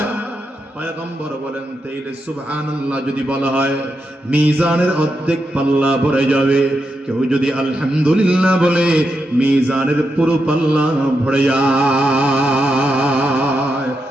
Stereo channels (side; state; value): both; normal; correlation 0.85